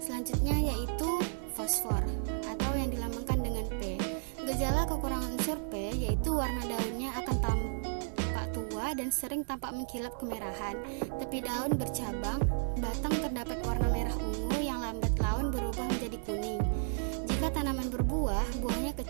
Selanjutnya yaitu fosfor atau yang dilambangkan dengan P. Gejala kekurangan unsur P yaitu warna daunnya akan tampak tua dan sering tampak mengkilap kemerahan. Tepi daun bercabang, batang terdapat warna merah ungu yang lambat laun berubah menjadi kuning. Jika tanaman berbuah, buahnya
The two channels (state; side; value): silent; left; 56 dB below the other